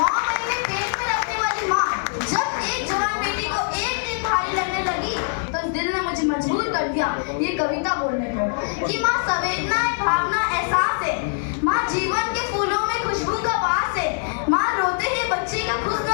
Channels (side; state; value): right; silent; digital silence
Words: महीने पेट में रखने वाली माँ जब एक जवान बेटी को एक दिन भारी लगने लगी तो दिल ने मुझे मजबूर कर दिया ये कविता बोलने को कि माँ संवेदना है, भावना, एहसास है. माँ जीवन के फूलों में खुशबू का वास है. माँ रोते ही बच्चे का खुश